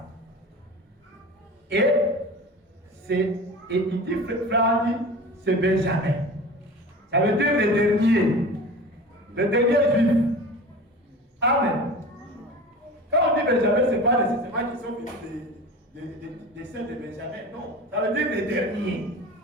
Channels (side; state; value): both; normal; correlation 0.34